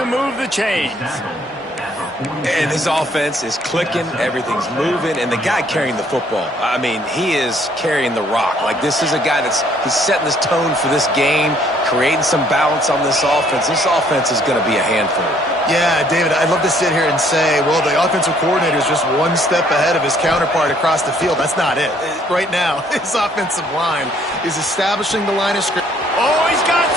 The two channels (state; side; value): normal; both; correlation 0.63